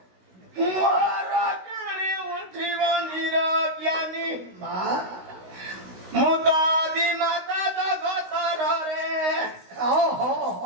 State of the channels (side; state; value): left; late; 16 ms